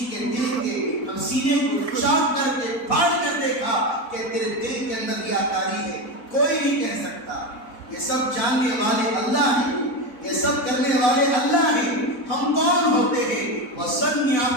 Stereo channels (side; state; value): right; late; 4.1 ms